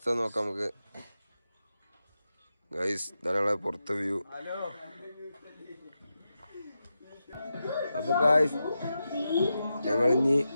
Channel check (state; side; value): inverted; both; correlation -0.89